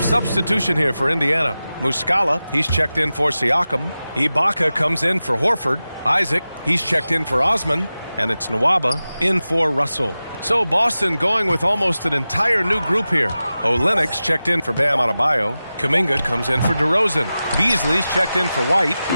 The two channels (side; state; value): both; inverted; correlation -0.95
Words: substitution here for Indiana. Muscala, he's checked in for Siakam. Ibaka comes in for Horford. Isaac, he's checked in for Osman. And it's Nwaba in for Russell. So Boston going with almost an entire new group here. Olenek's checked in for Bam Adebayo. Kuminga comes in for DeRozan. Beasley's checked in for White.